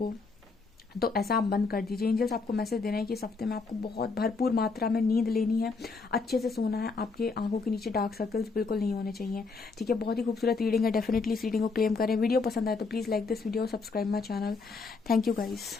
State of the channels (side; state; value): right; quieter; 4.3 dB